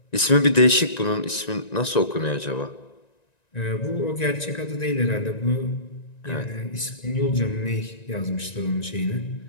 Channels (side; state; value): right; late; 1.9 ms